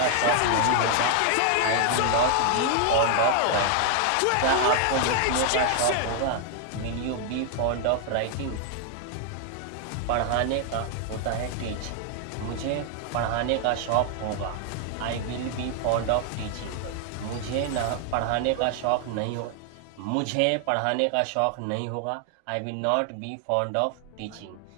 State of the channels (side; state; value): both; different; correlation 0.00